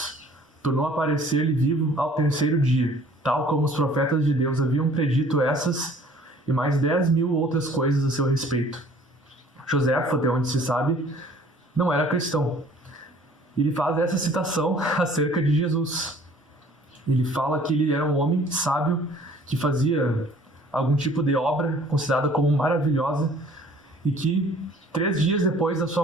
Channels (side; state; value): both; normal; correlation 0.53